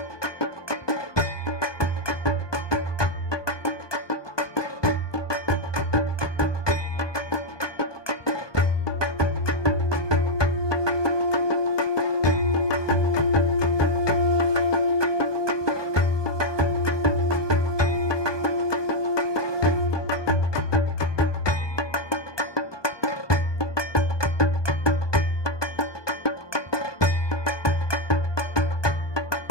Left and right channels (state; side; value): late; right; 1.2 ms